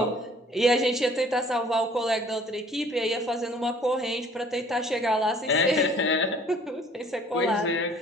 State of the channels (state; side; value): normal; both; correlation 0.55